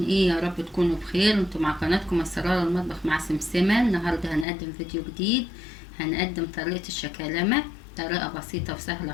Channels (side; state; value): right; drops out; at 4.5 s